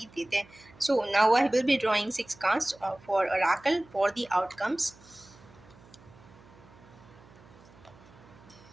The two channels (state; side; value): noise; right; hum, 24 dB below the sound